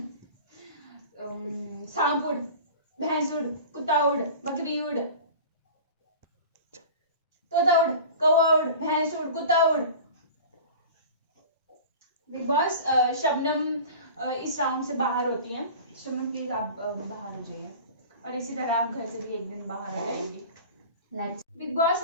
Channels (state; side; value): inverted; both; correlation -0.38